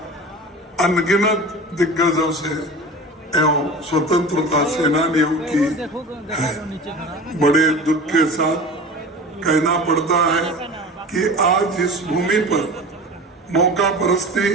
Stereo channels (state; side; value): normal; both; correlation 0.35